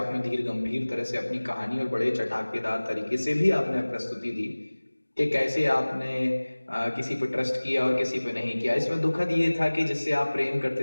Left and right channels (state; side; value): inverted; both; correlation -1.00